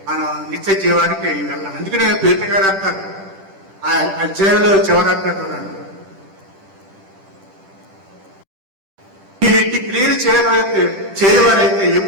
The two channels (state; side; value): late; left; 10 ms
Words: మనం నిత్య జీవానికి వెళ్ళాలి. అందుకనే పేతురు గారు అంటారు ఆ అధ్యాయంలో చివరంటారు, మీరు ఇంటి క్రియలు చేయవారైతే